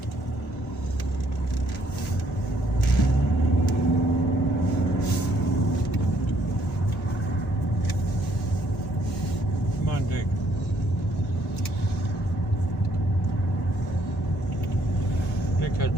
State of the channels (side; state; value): both; normal; correlation 0.67